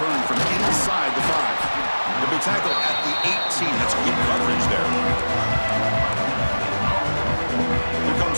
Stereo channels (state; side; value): inverted; both; correlation -1.00